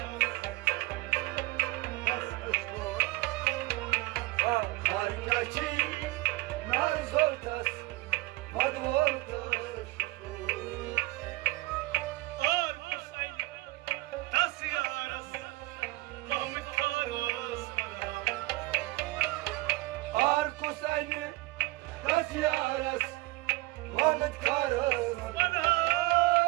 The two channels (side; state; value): left; quieter; 20.8 dB